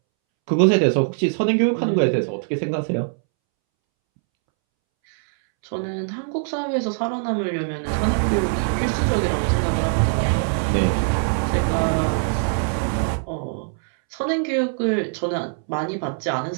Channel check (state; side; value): silent; left; 64 dB below the other